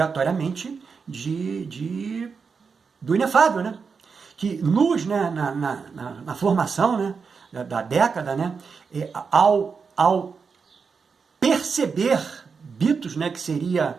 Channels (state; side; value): quieter; left; 5.4 dB